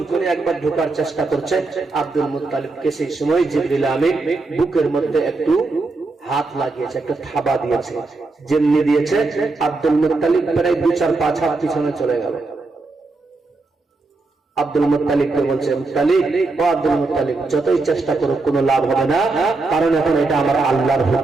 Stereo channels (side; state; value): left; quieter; 3.5 dB